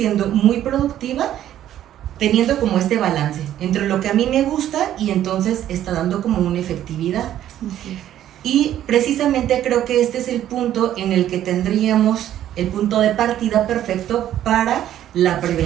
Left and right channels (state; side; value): quieter; left; 11.8 dB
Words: muy productiva, teniendo como este balance entre lo que a mí me gusta y entonces está dando como una efectividad. Así es. Y precisamente creo que este es el punto en el que tendríamos el punto de partida perfecto para la